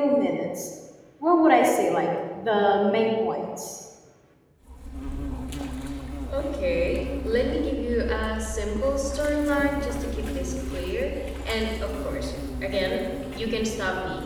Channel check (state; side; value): identical; both; correlation 1.00